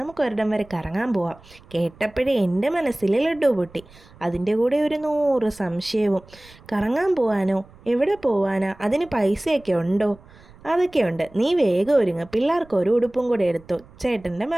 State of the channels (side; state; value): right; noise; rumble, 24 dB below the sound